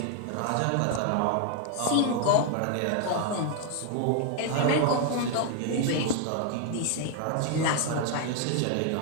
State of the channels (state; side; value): different; both; correlation 0.00